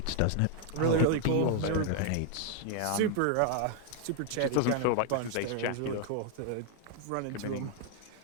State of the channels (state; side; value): different; both; correlation 0.00